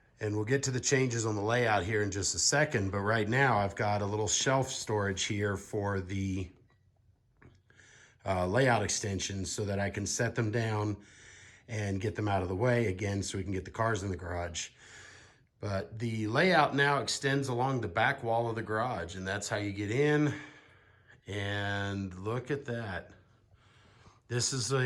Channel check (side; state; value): both; identical; correlation 1.00